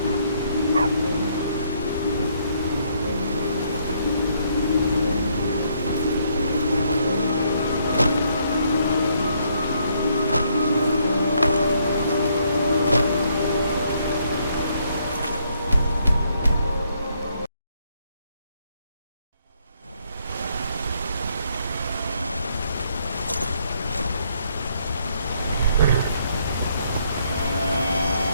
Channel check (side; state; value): both; inverted; correlation -0.70